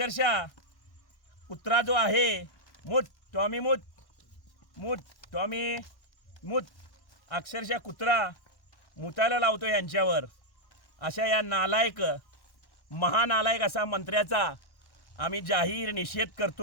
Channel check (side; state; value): right; late; 1.1 ms